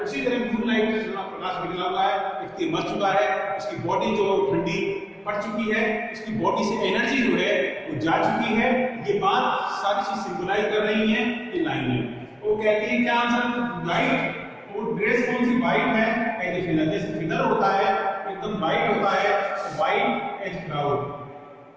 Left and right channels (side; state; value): both; identical; correlation 1.00